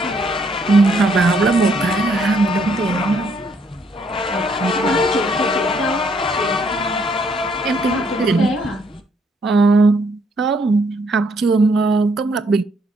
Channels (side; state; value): both; normal; correlation 0.70